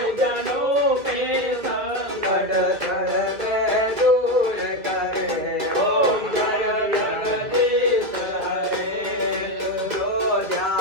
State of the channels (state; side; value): late; left; 1.9 ms